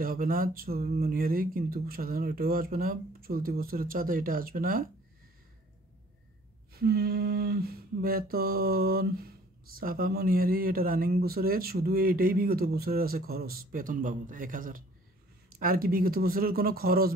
হবে না মনিহারি, কিন্তু সাধারণ এটাও আসবে না। চলতি বছরের চাঁদা এটা আসবে না। বেতন সাফা মনিহারি এটা রানিং বছরের, শুধু এটাই বিগত বছরের আছে খরচ বেতন বাবদ 1,000। আর কি বিগত বছরের কোনো খরচ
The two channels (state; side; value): normal; both; correlation 0.55